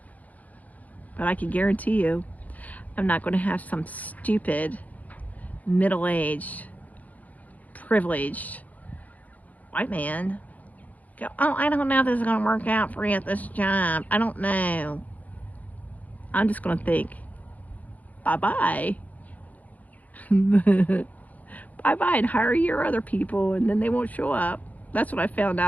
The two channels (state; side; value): late; right; 0.076 ms